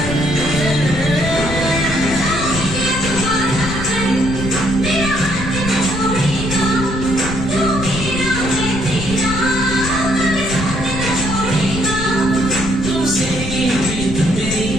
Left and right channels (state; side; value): noise; left; rumble, 6 dB below the sound